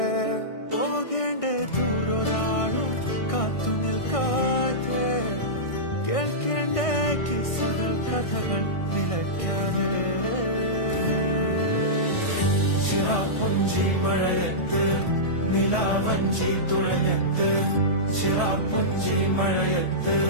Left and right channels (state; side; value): late; right; 1.6 ms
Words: പോകേണ്ട ദൂരൊരാളും കാത്തു നിൽക്കാതെ കേൾക്കേണ്ട കിസ്സകൾ കഥകൾ നിലയ്ക്കാതെ ചിറാപ്പുഞ്ചി മഴയത്ത് നിലാവഞ്ചി തുഴഞ്ഞത്ത് ചിറാപ്പുഞ്ചി മഴയത്ത്